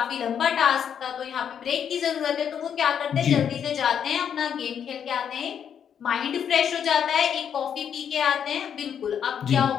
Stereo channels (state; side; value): quieter; right; 8.3 dB